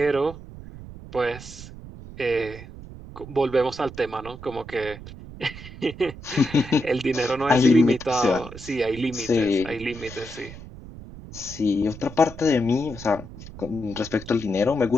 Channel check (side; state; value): right; noise; rumble, 14 dB below the sound